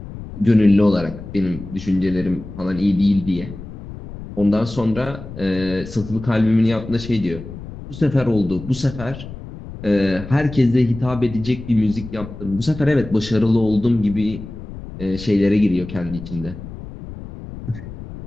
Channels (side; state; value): left; noise; rumble, 12 dB below the sound